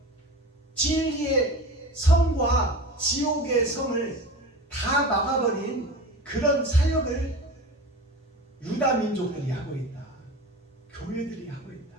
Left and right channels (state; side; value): normal; both; correlation 0.33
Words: 진리의 성과 지옥의 성을 다 막아버린 그런 사역을 유다 민족들이 하고 있다. 교회들이 하고 있다.